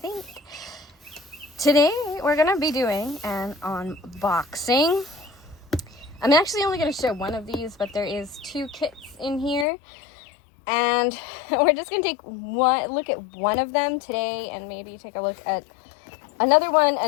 Today we're going to be doing an unboxing. I'm actually only going to show one of these, but there is two kits in here. And we're just going to take one look at one of them today and maybe take a look at another one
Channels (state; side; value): drops out; right; at 9.7 s